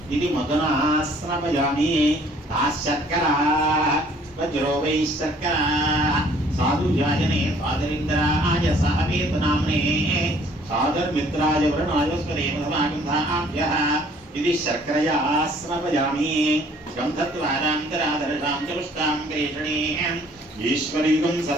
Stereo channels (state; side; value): normal; both; correlation 0.58